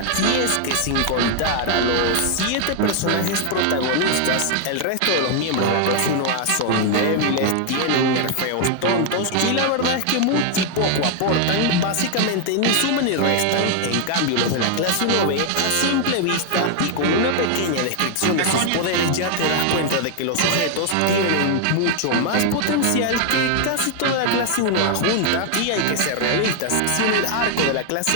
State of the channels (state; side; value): different; both; correlation 0.00